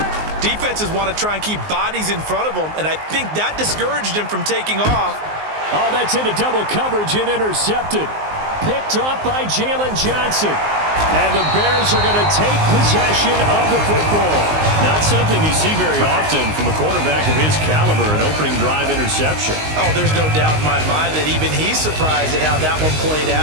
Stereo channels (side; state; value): left; late; 19 ms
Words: defenses want to try and keep bodies in front of them, and I think that discouraged him from taking off. Oh, that's into double coverage and intercepted. Picked off by Jalen Johnson. And the Bears are going to take possession of the football. Not something you see very often from a quarterback of his caliber, an opening drive interception. Oh, there's no doubt in my mind that even he's surprised at how that one played